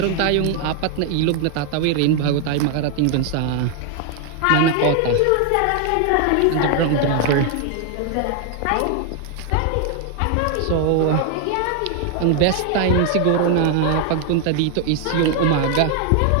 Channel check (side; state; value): both; different; correlation 0.00